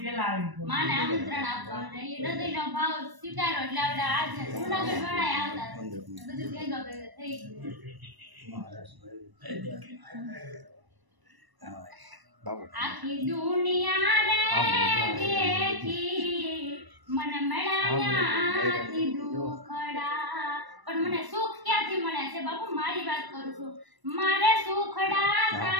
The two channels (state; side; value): late; left; 1.0 ms